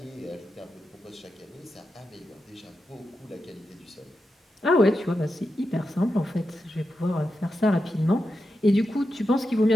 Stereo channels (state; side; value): normal; both; correlation 0.89